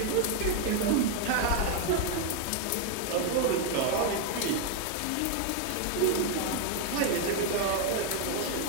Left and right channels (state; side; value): different; both; correlation 0.01